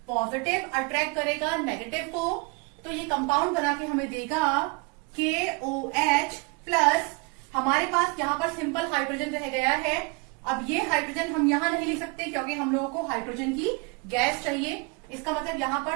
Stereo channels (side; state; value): left; quieter; 31.1 dB